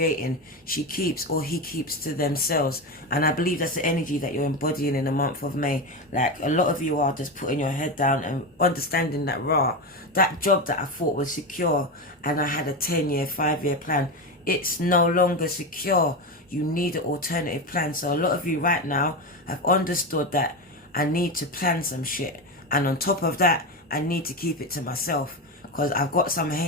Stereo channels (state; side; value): normal; both; correlation 0.17